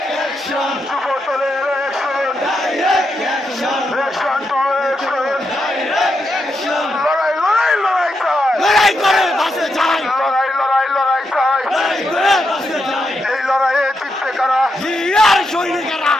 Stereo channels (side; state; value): both; normal; correlation 0.83